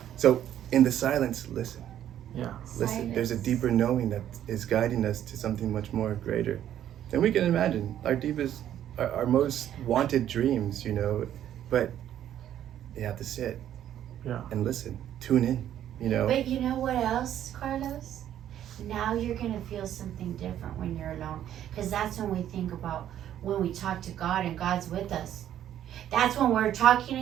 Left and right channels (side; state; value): left; quieter; 11.0 dB